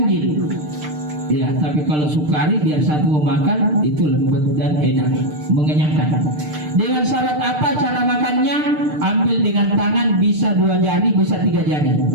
Ya, tapi kalau sukari biar satu memakan itu lembut dan enak, mengenyangkan. Dengan syarat apa cara makannya? Ambil dengan tangan, bisa 2 jari, bisa 3 jari.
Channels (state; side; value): late; left; 6.6 ms